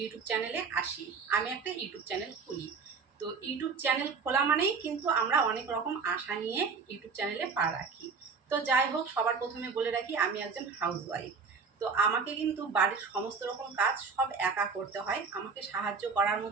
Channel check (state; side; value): quieter; left; 5.2 dB